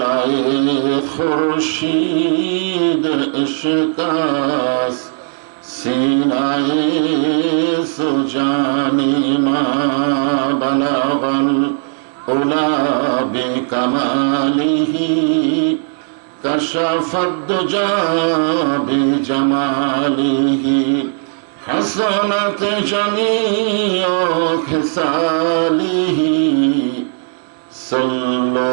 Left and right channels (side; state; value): left; silent; 65 dB below the other